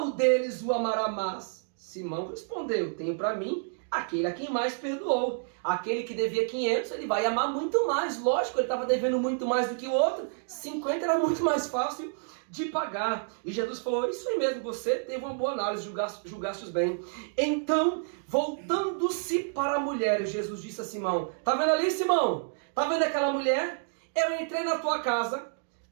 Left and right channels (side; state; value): left; silent; digital silence